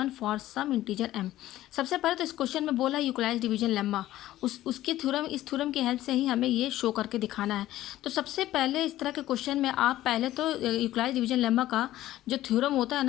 for some integer m। सबसे पहले तो इस क्वेश्चन में बोला यूटिलाइज डिवीजन लेम्मा, उसकी थ्योरम, इस थ्योरम की हेल्प से ही हमें ये शो करके दिखाना है। तो सबसे पहले इस तरह के क्वेश्चन में आप पहले तो यूटिलाइज डिवीजन लेम्मा का जो थ्योरम होता है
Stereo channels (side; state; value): right; quieter; 14.6 dB